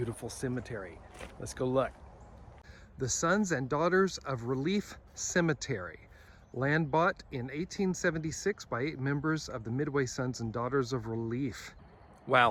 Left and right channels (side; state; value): both; identical; correlation 1.00